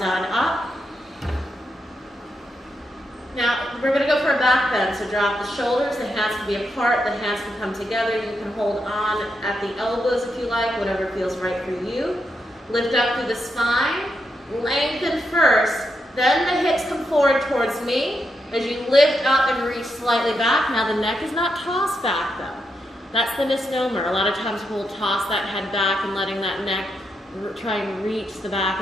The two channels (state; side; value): normal; both; correlation 0.83